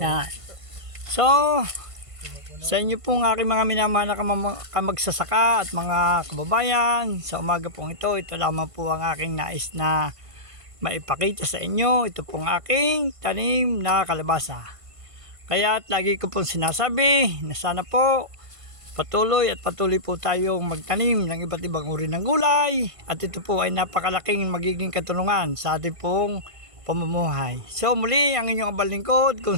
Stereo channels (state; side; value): late; left; 1.5 ms